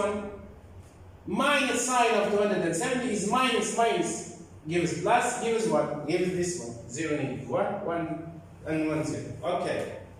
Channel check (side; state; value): both; identical; correlation 1.00